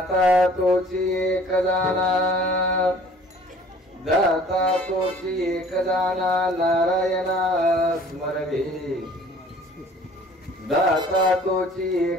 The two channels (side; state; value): both; normal; correlation 0.52